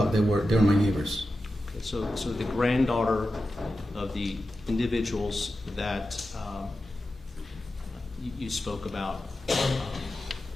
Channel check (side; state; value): both; normal; correlation 0.92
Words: They were my neighbors. Okay, so the granddaughter of the individuals that you spoke about,